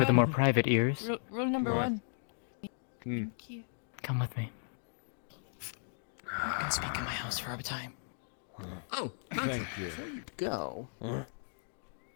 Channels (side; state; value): right; silent; digital silence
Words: the more private ears. Rule number What? 1. Hmm. Thank you. Come with me. You can speak in my house for a time. Oh, Thank you. Before you go,